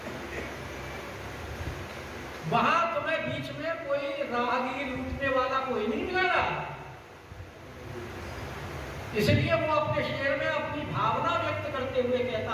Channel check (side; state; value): both; identical; correlation 1.00